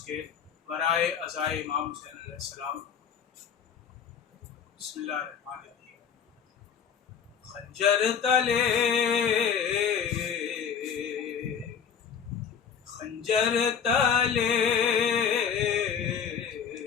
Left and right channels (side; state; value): right; quieter; 7.3 dB